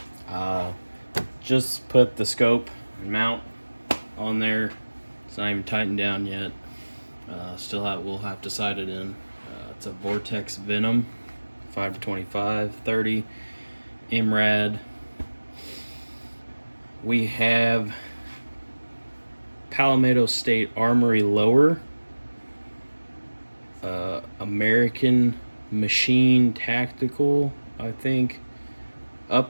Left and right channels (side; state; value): both; inverted; correlation -1.00